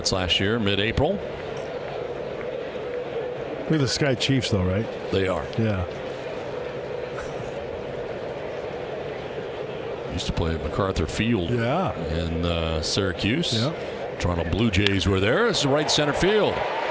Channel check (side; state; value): both; identical; correlation 1.00